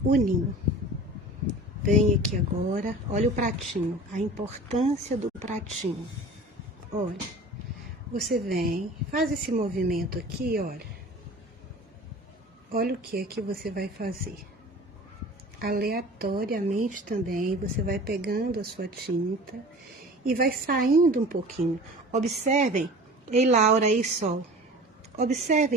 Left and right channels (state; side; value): normal; both; correlation 0.40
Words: o ninho. Vem aqui agora, olha o pratinho, a importância do pratinho. Olha, você vem, faz esse movimento aqui, olha. Olha o que é que você vai fazer. Aleatoriamente também, você vai pegando a sua tinta e vai saindo um pouquinho. Observem, ei Laura, ei Sol,